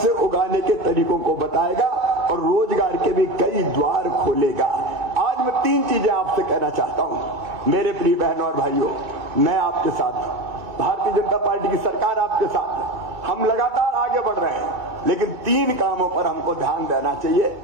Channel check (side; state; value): left; late; 2.3 ms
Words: उगाने के तरीकों को बताएगा और रोजगार के भी कई द्वार खोलेगा। आज मैं 3 चीजें आपसे कहना चाहता हूं मेरे प्रिय बहनों और भाइयों। मैं आपके साथ, भारतीय जनता पार्टी की सरकार आपके साथ है, हम लगातार आगे बढ़ रहे हैं, लेकिन 3 कामों पर हमको ध्यान देना चाहिए।